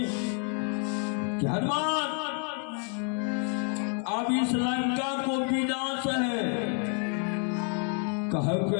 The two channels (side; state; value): right; quieter; 39.7 dB